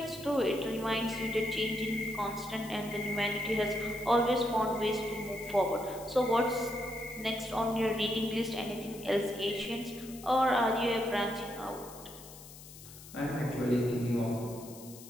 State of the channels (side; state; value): left; noise; hiss, 17 dB below the sound